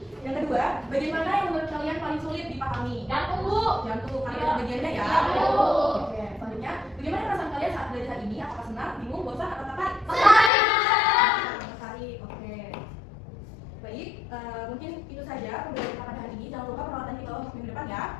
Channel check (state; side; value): drops out; right; at 10.5 s